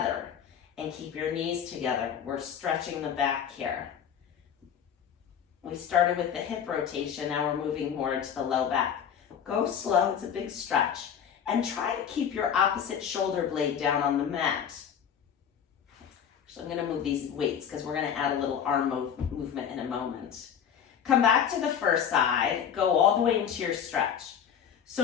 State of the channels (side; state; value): right; quieter; 8.3 dB